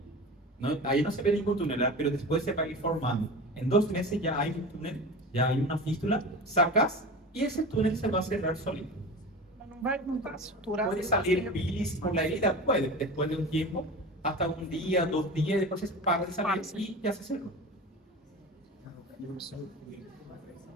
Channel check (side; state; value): both; normal; correlation 0.31